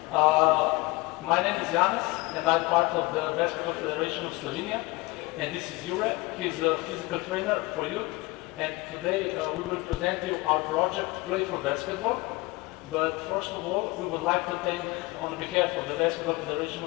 My name is Janis, and I'm part of the Basketball Federation of Slovenia. And this is Jure. He's a physical trainer for youth. And today we will present you our project, Playful Basketball. But first of all, we would like to thank, on behalf of the Basketball Federation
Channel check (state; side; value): quieter; right; 22.9 dB